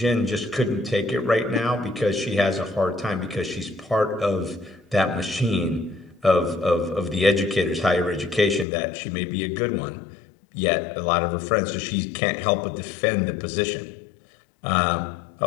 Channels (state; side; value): drops out; right; at 8.7 s